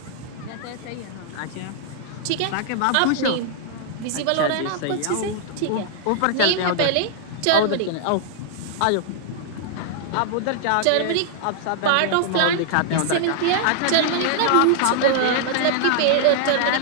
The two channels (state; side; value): different; both; correlation -0.01